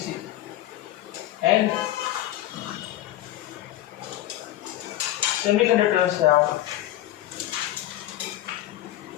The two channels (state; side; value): quieter; right; 14.4 dB